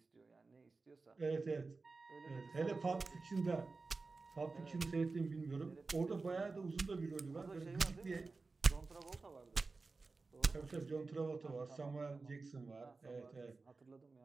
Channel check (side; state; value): left; quieter; 3.9 dB